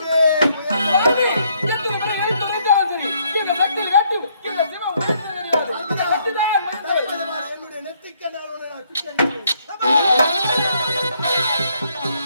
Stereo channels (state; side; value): inverted; both; correlation -0.70